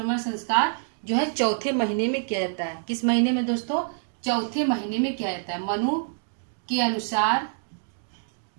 संस्कार जो है चौथे महीने में किया जाता है। किस महीने में दोस्तों? चौथे महीने में किया जाता है। मनु के अनुसार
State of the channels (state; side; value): silent; left; digital silence